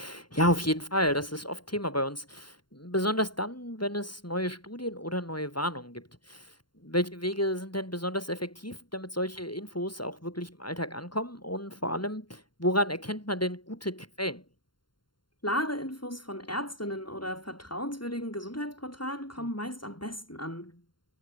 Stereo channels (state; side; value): late; right; 0.72 ms